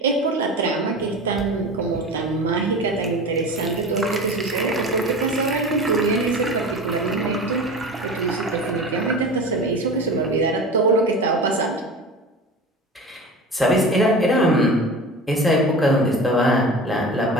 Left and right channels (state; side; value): normal; both; correlation 0.33